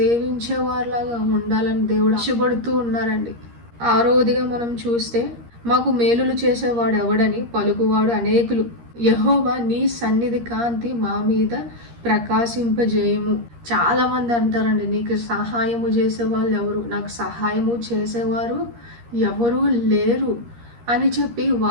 వారిలాగా ఉండాలని దేవుడు ఆశపడుతూ ఉన్నారండి. 6వదిగా మనం చూస్తే, మాకు మేలులు చేసేవాడు ఎవడని పలుకువాడు అనేకులు. యెహోవా నీ సన్నిధి కాంతి మా మీద ప్రకాశింపజేయము. చాలా మంది అంటారండి, నీకు సహాయము చేసేవాళ్ళు ఎవరు, నాకు సహాయము చేసేవారు ఎవరు లేరు అని చెప్పి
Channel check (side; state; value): left; late; 13 ms